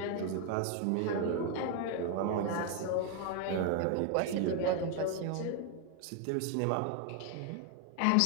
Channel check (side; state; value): both; different; correlation 0.01